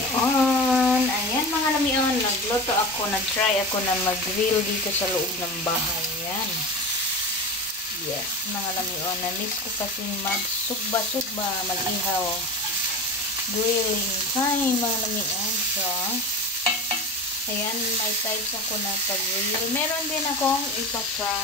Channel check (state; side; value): normal; both; correlation 0.28